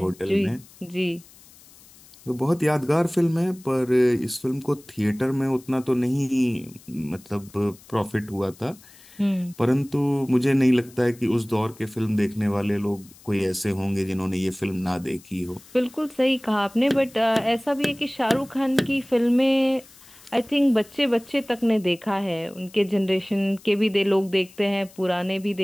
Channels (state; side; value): noise; left; hiss, 24 dB below the sound